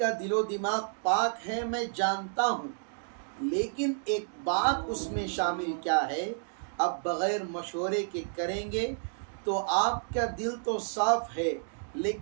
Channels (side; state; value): left; silent; digital silence